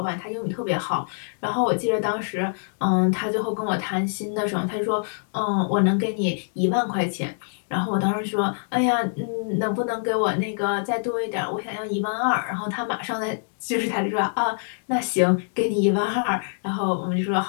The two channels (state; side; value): silent; right; digital silence